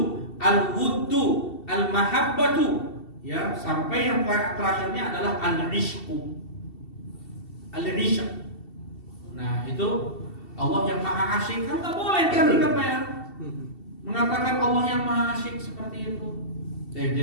al-wuddu, al-mahabbatu. Ya, sampai yang terakhirnya adalah al-ishqu. Al-ishq. Nah, itu Allah yang maha asyik kan enggak boleh kan ya. Mengatakan Allah yang maha asyik seperti itu.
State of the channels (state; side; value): late; right; 2.7 ms